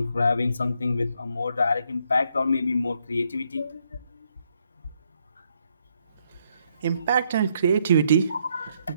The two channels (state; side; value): inverted; both; correlation -0.74